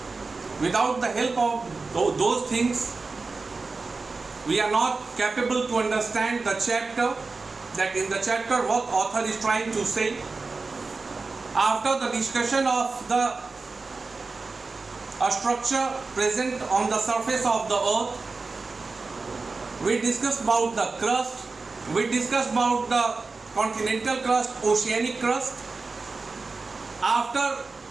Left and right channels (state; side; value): quieter; left; 4.0 dB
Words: Without the help of those things, we are not capable to understand the chapter. That in the chapter what author is trying to say. After the discussion of the structure present on the surface of the earth, we discussed about the crust, we discussed about the continental crust, oceanic crust. After